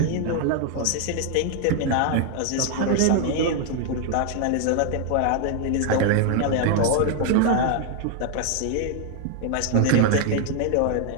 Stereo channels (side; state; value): both; different; correlation 0.00